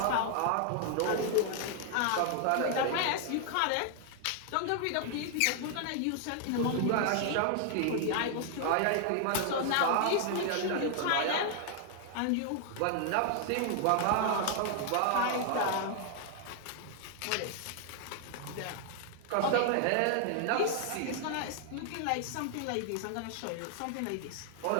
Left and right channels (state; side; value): different; both; correlation 0.00